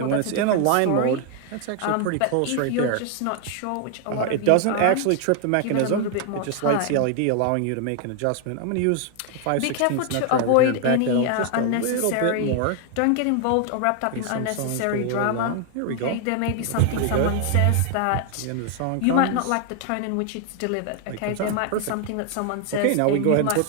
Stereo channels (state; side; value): different; both; correlation 0.00